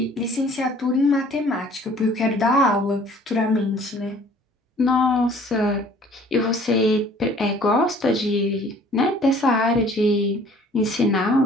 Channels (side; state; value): both; normal; correlation 0.54